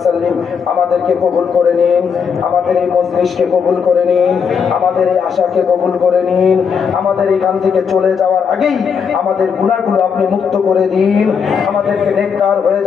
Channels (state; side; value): quieter; right; 6.5 dB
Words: আমাদেরকে কবুল করে নিন আমাদের এই মজলিসকে কবুল করে নিন আমাদের এই আশাকে কবুল করে নিন আমাদের এখান থেকে চলে যাওয়ার আগেই আমাদের গুনাহগুলো আপনি মুক্ত করে দিন আমাদেরকে নেককার হয়ে